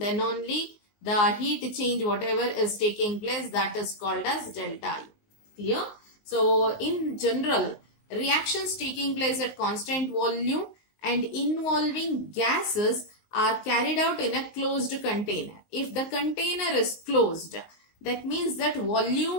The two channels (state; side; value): late; right; 19 ms